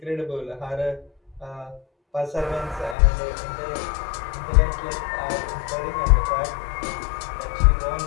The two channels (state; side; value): drops out; right; at 3.0 s